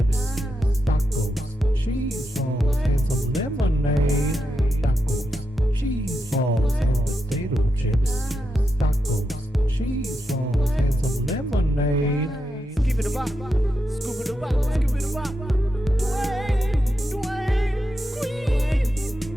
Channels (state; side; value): normal; both; correlation 0.86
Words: Tacos, cheese balls, and some lemonade. Tacos, cheese balls, and potato chips. Tacos, cheese balls, and some lemonade. Skip it a bop, scoop it a bop, skip it a bop. Dwayne, Dwayne, squeeze,